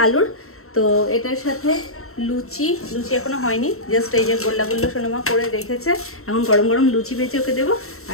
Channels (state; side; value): late; right; 0.63 ms